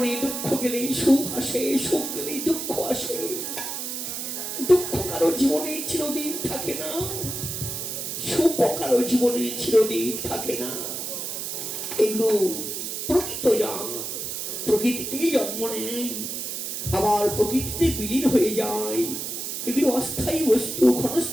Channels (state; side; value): noise; right; hiss, 5 dB below the sound